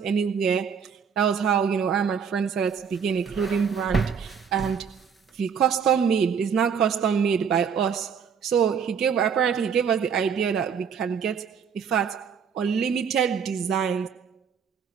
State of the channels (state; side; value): quieter; left; 6.9 dB